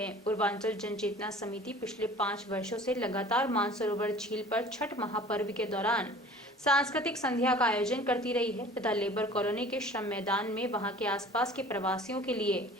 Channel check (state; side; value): normal; both; correlation 0.46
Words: पूर्वांचल जनचेतना समिति पिछले 5 वर्षों से लगातार मानसरोवर झील पर छठ महापर्व के दौरान सांस्कृतिक संध्या का आयोजन करती रही है तथा लेबर कॉलोनी के श्रम मैदान में वहां के आसपास के प्रवासियों के लिए